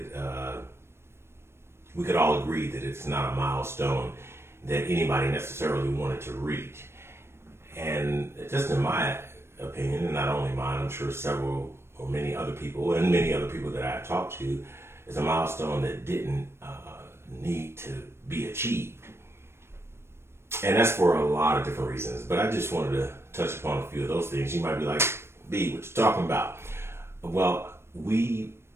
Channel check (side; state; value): left; late; 0.12 ms